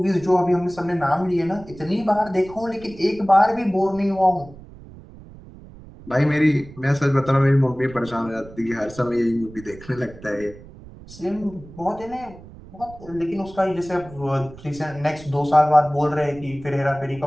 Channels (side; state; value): right; noise; rumble, 19 dB below the sound